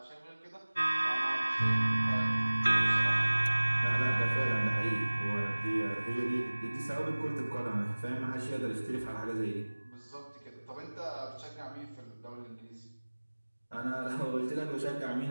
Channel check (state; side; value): inverted; both; correlation -1.00